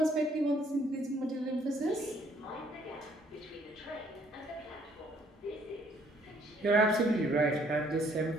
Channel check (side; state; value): both; normal; correlation 0.64